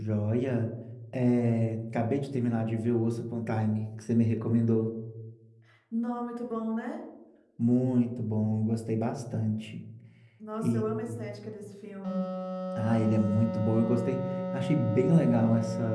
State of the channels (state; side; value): identical; both; correlation 1.00